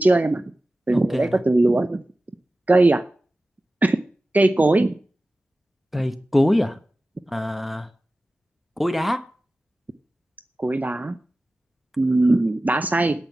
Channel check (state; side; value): normal; both; correlation 0.95